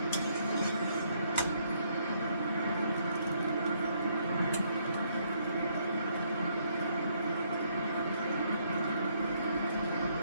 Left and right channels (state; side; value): inverted; both; correlation -0.70